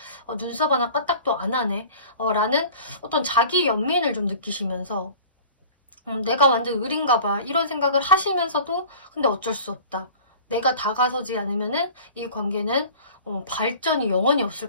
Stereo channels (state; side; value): inverted; both; correlation -0.42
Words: 눈썹 하나 까딱도 안 하네. 라는 어떤 자기 연민을 좀 느끼시면서 내가 완전 을인가 봐. 이런 생각을 하시면서도 근데 어쩔 수 없다. 내가 다가서지 않으면은 이 관계는 발전이 영원히